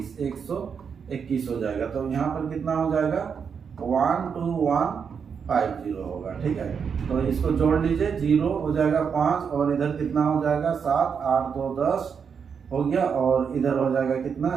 121 हो जाएगा। तो यहाँ पर कितना हो जाएगा, 12150 होगा। ठीक है, तो इसको जोड़ लीजिए, 0 हो जाएगा 5 और इधर कितना हो जाएगा 7, 8 2 10 हो गया और इधर हो जाएगा कितना,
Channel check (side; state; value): left; quieter; 6.6 dB